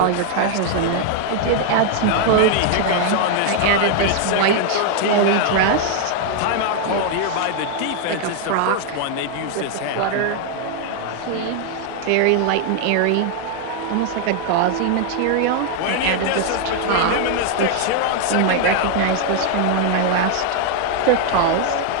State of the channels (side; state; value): both; different; correlation 0.00